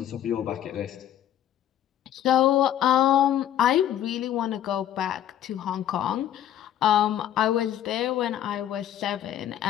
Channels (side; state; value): right; quieter; 11.1 dB